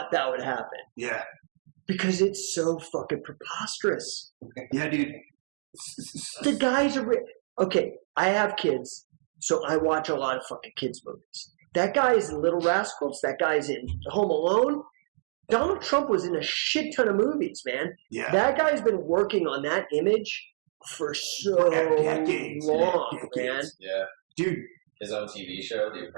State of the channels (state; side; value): silent; left; digital silence